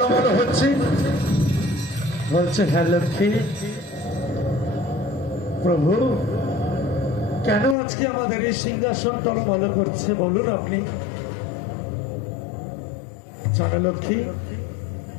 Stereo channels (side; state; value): right; drops out; at 7.8 s